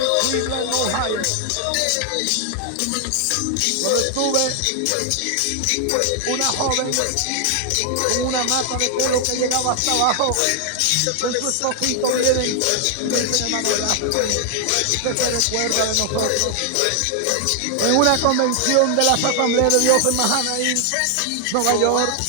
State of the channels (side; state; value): both; different; correlation 0.00